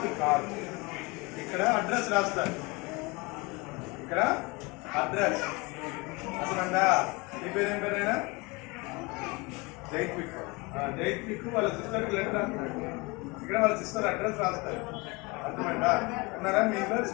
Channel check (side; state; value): right; quieter; 26.2 dB